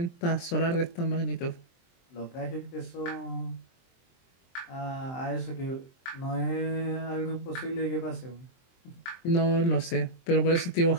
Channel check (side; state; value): right; late; 23 ms